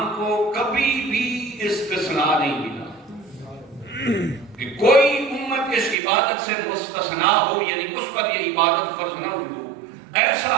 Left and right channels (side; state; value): left; drops out; at 6.0 s